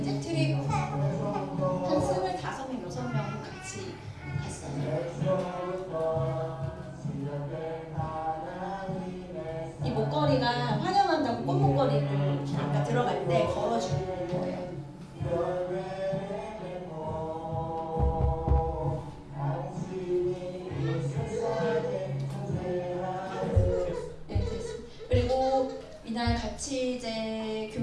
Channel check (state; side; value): identical; both; correlation 1.00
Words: 이제 트립 한 25명, 6명 같이 갔어요. 이 목걸이가 환영한다고 꽃목걸이를 아까 들어갈 때 걸어주는 거예요. 네, 됐습니다. 그리고 이날 같이 이제